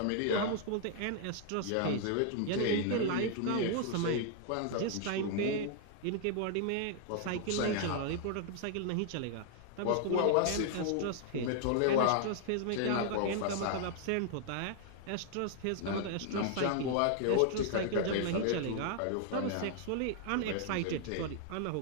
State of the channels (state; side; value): different; both; correlation 0.00